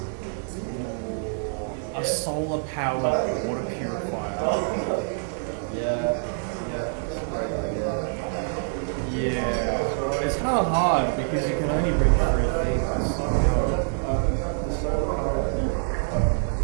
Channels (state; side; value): silent; left; 61 dB below the other